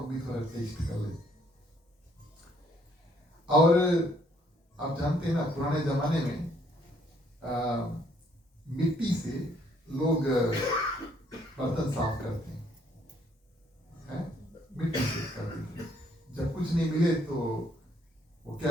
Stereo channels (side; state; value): both; normal; correlation 0.67